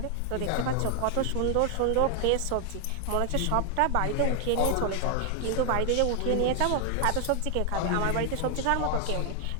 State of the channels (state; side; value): different; both; correlation 0.00